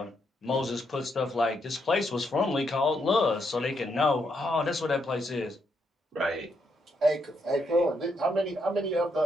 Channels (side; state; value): both; normal; correlation 0.78